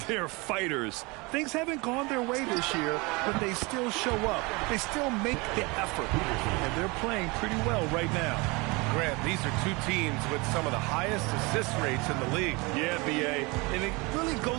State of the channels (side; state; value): left; quieter; 26.1 dB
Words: they're fighters. Things haven't gone their way this year, but they still show up. They still make the effort, and they're playing pretty well right now. Grant, these are two teams with some of the highest assist rates in the league. Yeah, B.A., and it really